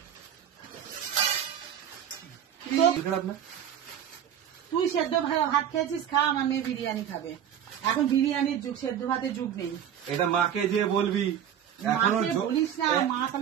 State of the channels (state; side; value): quieter; left; 9.5 dB